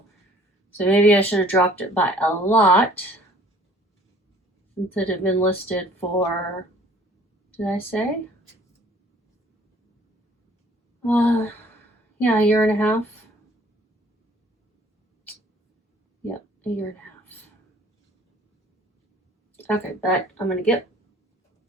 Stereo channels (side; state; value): both; normal; correlation 0.55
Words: So maybe I should have dropped it by a lot since it had been listed for, did I say? Yeah, a year and a half. Yep, a year and a half. Okay, but I'm gonna get